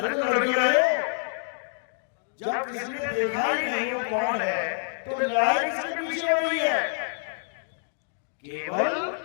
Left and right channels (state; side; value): silent; right; digital silence